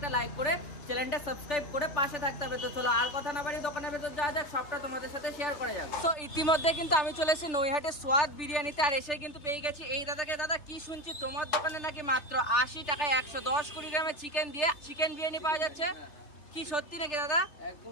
লাইক করে চ্যানেলটা সাবস্ক্রাইব করে পাশে থাকতে হবে। তো চলো আর কথা না বাড়ি দোকানের ভেতর যাওয়া যাক, সবটা তোমাদের সাথে শেয়ার করে যাবে। তো ইতিমধ্যে কিন্তু আমি চলে এসেছি নৈহাটের স্বাদ বিরিয়ানিতে, আর এসে কিন্তু পেয়ে গেছি এই দাদাকে। দাদা কি শুনছি তোমার দোকানে নাকি মাত্র 80 টাকায় 110 কোটি গ্রামের চিকেন দিয়ে চিকেন বিরিয়ানি পাওয়া যাচ্ছে, কি সত্যি নাকি দাদা?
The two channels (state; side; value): late; right; 3.3 ms